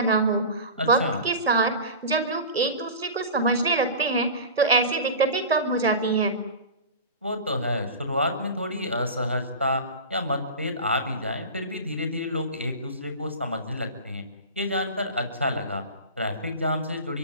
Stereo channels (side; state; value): both; inverted; correlation -0.31